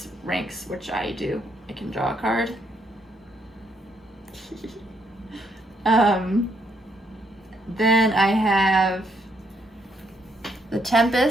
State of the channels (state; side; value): normal; both; correlation 0.74